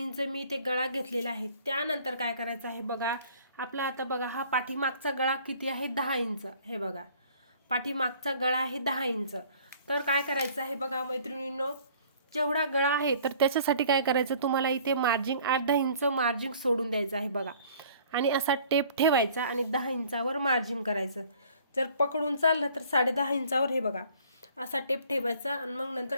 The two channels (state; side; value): inverted; both; correlation -0.54